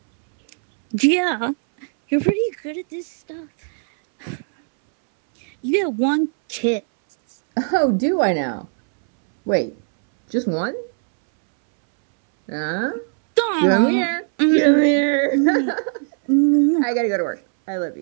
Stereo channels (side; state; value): left; silent; 65 dB below the other